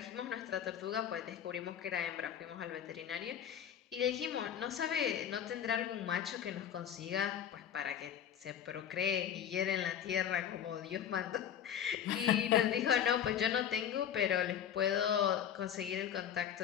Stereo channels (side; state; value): right; quieter; 9.3 dB